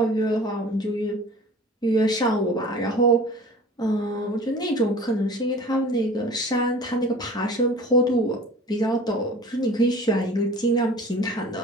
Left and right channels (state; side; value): normal; both; correlation 0.43